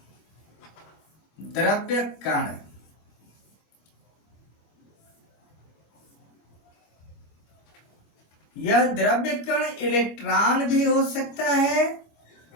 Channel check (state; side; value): late; right; 25 ms